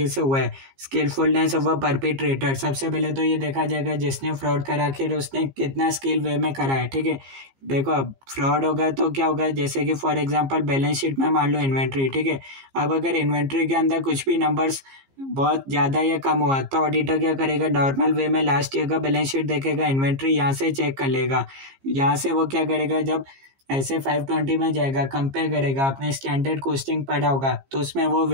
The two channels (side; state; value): left; late; 15 ms